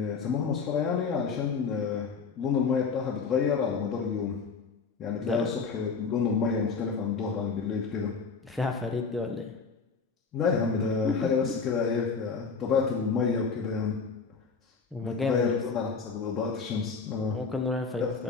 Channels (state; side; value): quieter; right; 5.1 dB